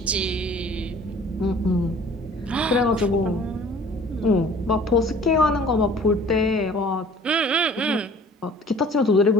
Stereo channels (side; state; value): both; normal; correlation 0.50